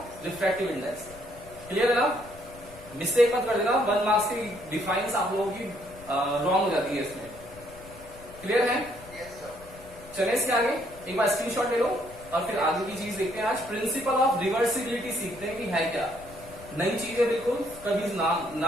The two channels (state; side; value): noise; left; rumble, 20 dB below the sound